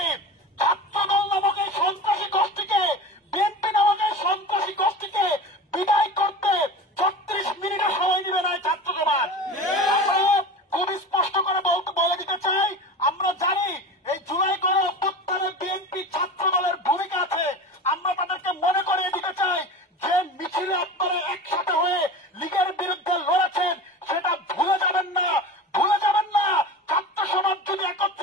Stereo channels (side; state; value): both; normal; correlation 0.32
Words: ছাত্রদল নামক এই সন্ত্রাসী গোষ্ঠীকে, বিএনপি নামক এই সন্ত্রাসী গোষ্ঠীকে বিদায় করতে 36 মিনিটের সময় নেবে না ছাত্র সমাজ। আমরা খুব স্পষ্ট করে বলে দিতে চাই, আমরা জানি এই জুলাই গণ অভ্যুত্থানে বিএনপি ছাত্র দলের ভূমিকা আছে। আমরা তাদেরকে মনে করিয়ে দিতে চাই, যে মিছিলে আপনারা একসাথে হয়ে লীগের বিরুদ্ধে লড়েছেন, সেটা ভুলে যাবেন না, ভুলে যাবেন না। ছাত্র সমাজ যদি